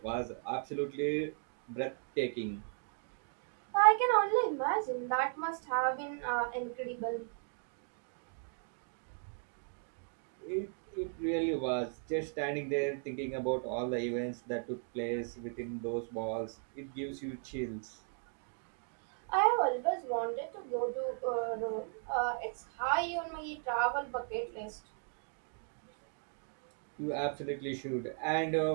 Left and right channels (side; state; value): left; silent; 53 dB below the other